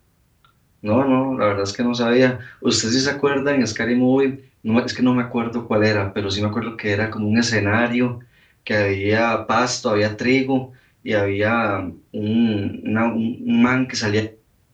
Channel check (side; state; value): both; identical; correlation 1.00